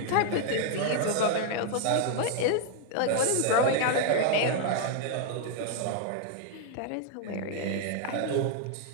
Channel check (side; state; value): both; different; correlation 0.00